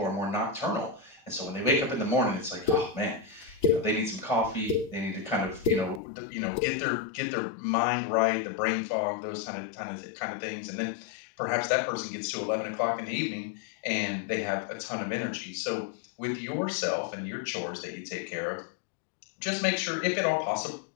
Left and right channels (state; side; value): drops out; right; at 6.0 s